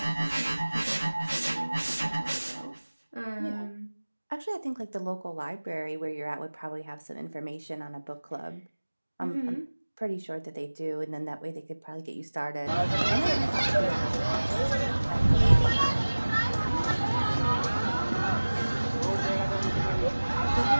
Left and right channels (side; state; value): both; inverted; correlation -1.00